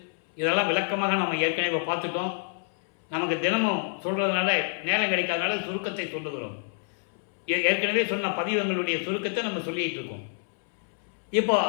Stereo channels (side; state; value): right; silent; 60 dB below the other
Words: இதெல்லாம் விளக்கமாக நம்ம ஏற்கனவே பார்த்துட்டோம். நமக்கு தினமும் சொல்றதுனால நேரம் கிடைக்காதனால சுருக்கத்தை சொல்லுகிறோம். ஏற்கனவே சொன்ன பதிவங்களுடைய சுருக்கத்தை நம்ம சொல்லிட்டு இருக்கோம். இப்போ